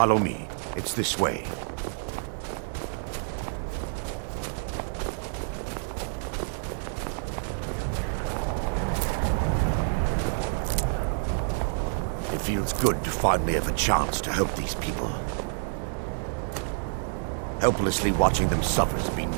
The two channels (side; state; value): left; silent; digital silence